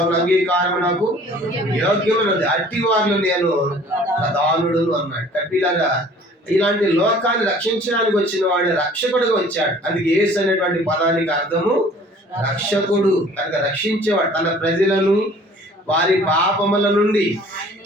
అంగీకారం నాకు యోగ్యమైనది, అట్టి వారిలో నేను ప్రధానుడు అన్నాడు. కట్టిలాగా ఇలాంటి లోకాన్ని రక్షించడానికి వచ్చిన వాడే రక్షకుడుగా వచ్చాడు. అందుకే యేసు అనేటువంటి పదానికి అర్థము రక్షకుడు, కనుక రక్షించేవాడు. తన ప్రజలను వారి పాపముల నుండి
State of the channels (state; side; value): normal; both; correlation 0.51